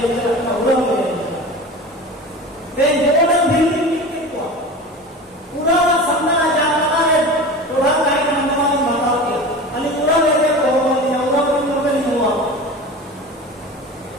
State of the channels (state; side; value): normal; both; correlation 0.33